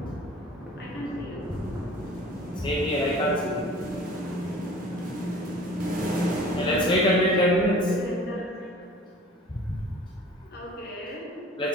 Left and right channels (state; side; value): normal; both; correlation 0.45